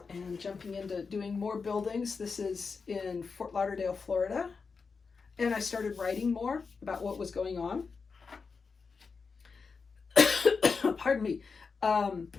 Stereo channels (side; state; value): right; quieter; 5.0 dB